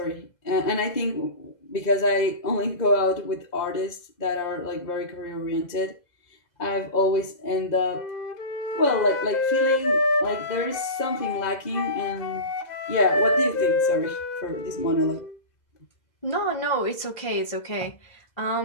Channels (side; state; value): right; late; 2.0 ms